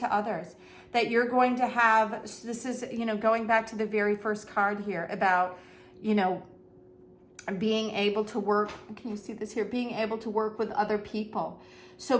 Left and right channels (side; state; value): both; identical; correlation 1.00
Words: others. That you're going to have, this is, going back to the very first card here about, being able to work, can you see this here? Being able to work with other people.